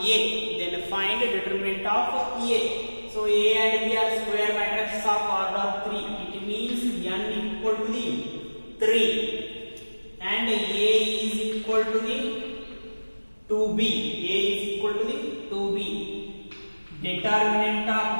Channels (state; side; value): inverted; both; correlation -1.00